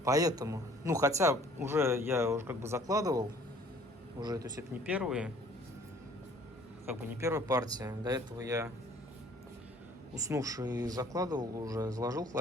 Поэтому, ну, хотя я уже как бы закладывал, уже, то есть это не первая партия. До этого я уснувший закладывал уже, заложил в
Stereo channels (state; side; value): normal; both; correlation 0.54